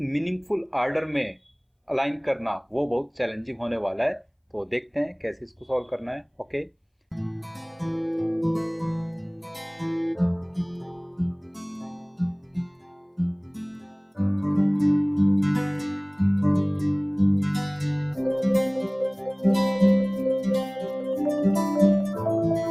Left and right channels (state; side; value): identical; both; correlation 1.00